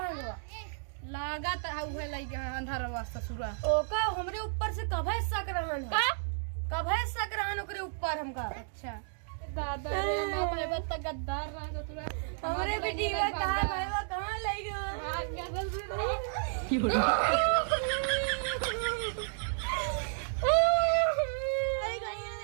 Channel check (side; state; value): left; silent; digital silence